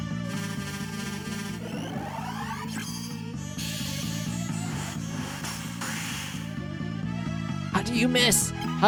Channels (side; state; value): both; identical; correlation 1.00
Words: do you miss?